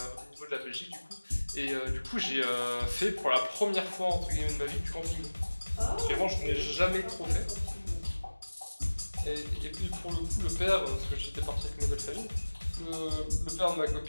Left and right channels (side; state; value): both; inverted; correlation -1.00